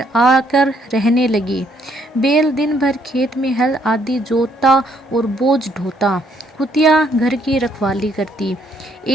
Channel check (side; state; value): both; normal; correlation 0.69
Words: आकर रहने लगी। बैल दिन भर खेत में हल आदि जोतता और बोझ ढोता। कुतिया घर की रखवाली करती।